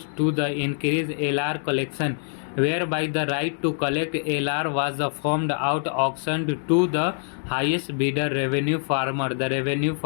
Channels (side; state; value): right; silent; 62 dB below the other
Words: to the increase LR collection, whereby the right to collect LR was formed out auctioned to the highest bidder revenue farmer. The revenue